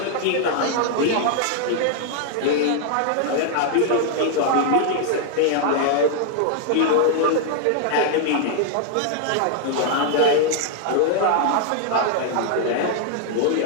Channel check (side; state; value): both; different; correlation 0.00